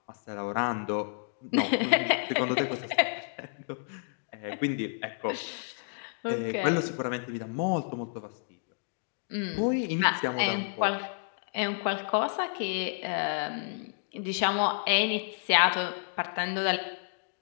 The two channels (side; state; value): right; silent; digital silence